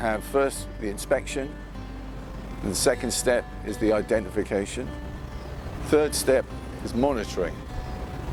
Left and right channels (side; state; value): both; identical; correlation 1.00